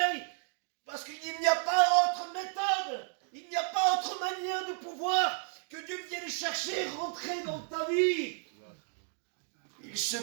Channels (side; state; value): left; silent; 56 dB below the other